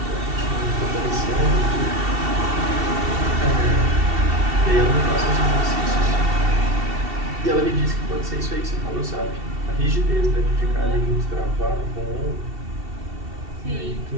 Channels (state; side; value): late; left; 2.7 ms